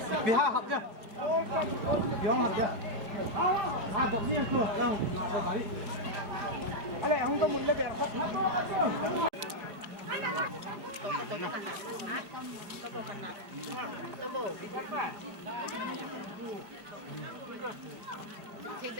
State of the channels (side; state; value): left; late; 4.9 ms